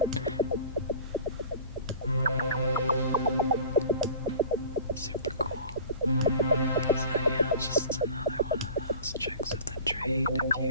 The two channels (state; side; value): inverted; both; correlation -0.41